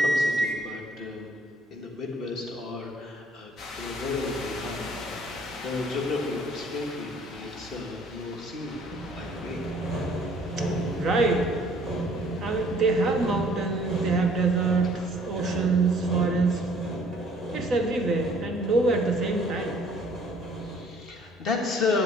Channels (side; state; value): both; normal; correlation 0.58